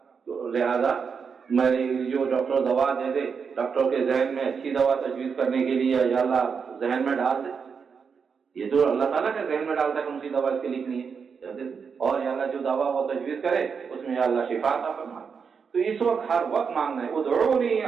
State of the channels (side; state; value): left; quieter; 6.0 dB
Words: لہذا میری جو ڈاکٹر دوا دے دے، ڈاکٹر کے ذہن میں اچھی دوا تجویز کرنے کے لیے یا اللہ ذہن میں ڈال دے. یہ تو اللہ تعالیٰ کے ذہن میں ڈالتا ہے کون سی دوا اس کے لکھنی ہے، اور یا اللہ جو دوا وہ تجویز کرے اس میں یا اللہ شفا عطا فرمائے. تو اس وقت ہر وقت مانگنا ہے. ادعونی